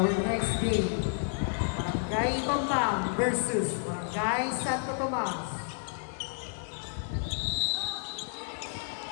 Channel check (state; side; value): silent; right; digital silence